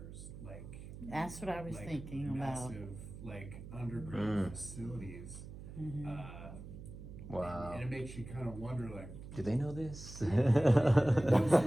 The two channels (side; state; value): right; noise; hum, 13 dB below the sound